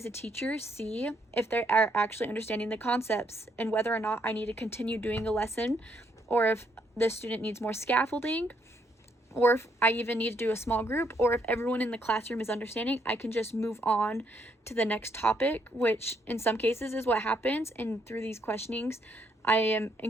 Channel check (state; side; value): normal; both; correlation 0.72